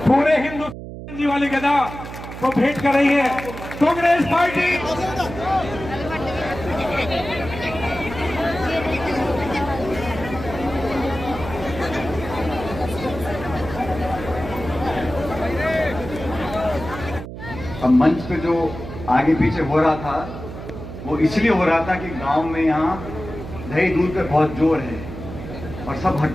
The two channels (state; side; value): noise; right; hum, 11 dB below the sound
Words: पूरे हिंदुस्तान जी वाली गदा को भेंट कर रही है कांग्रेस पार्टी। अब मंच पे जो आगे पीछे हो रहा था वो इसलिए हो रहा था कि गांव में यहाँ दही दूध पे बहुत जोर है और सब